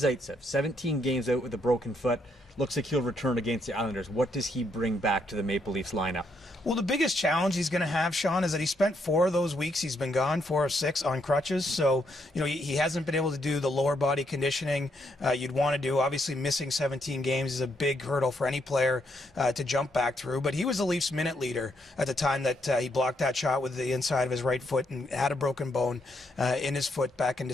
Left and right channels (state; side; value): normal; both; correlation 0.75